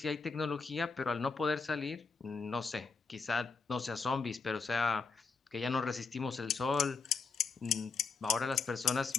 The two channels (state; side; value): quieter; right; 4.7 dB